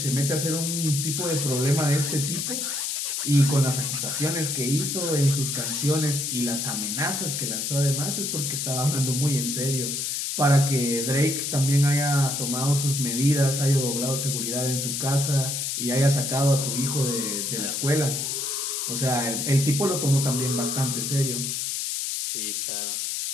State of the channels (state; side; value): noise; left; hiss, 2 dB below the sound